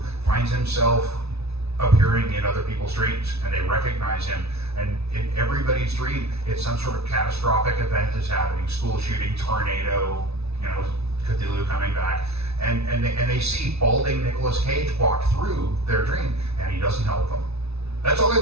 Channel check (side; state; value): left; late; 0.80 ms